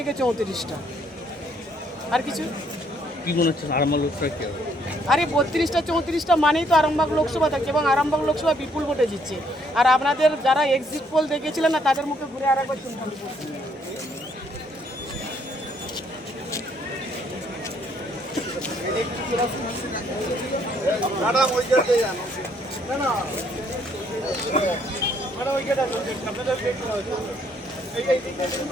34টা। আর কিছু কি মনে হচ্ছে আরামবাগ লোকসভা কি হবে? আরে 32টা 34টা মানেই তো আরামবাগ লোকসভা থাকছে এবং আরামবাগ লোকসভা বিপুল ভোটে জিতছে। আর আপনাদের যারা এক্সিট পোল দেখেছিলেন না তাদের মুখে ঘুরে আরেকবার শুনলাম।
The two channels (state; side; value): normal; both; correlation 0.68